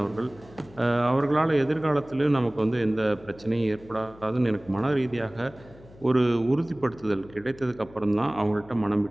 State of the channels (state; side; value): noise; left; hum, 22 dB below the sound